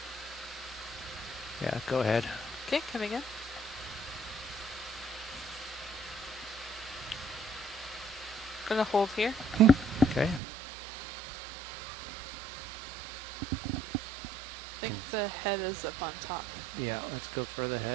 Yeah, go ahead. Okay, coming in. Gonna hold here. Okay. I think the head is up on top. Yeah, let's go further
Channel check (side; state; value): left; drops out; at 10.4 s